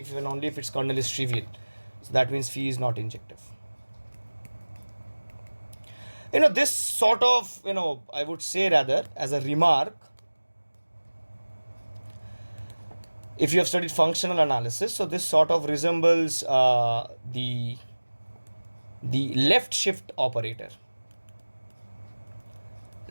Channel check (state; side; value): inverted; both; correlation -1.00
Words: if and only if its kernel is trivial. So that means phi is not injective. This sort of, I would say rather as a remark, if you have studied functional analysis, so this sort of resembles the the left shift operator